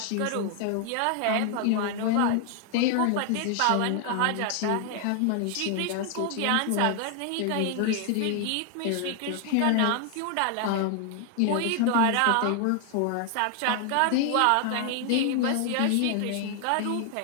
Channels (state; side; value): different; both; correlation 0.00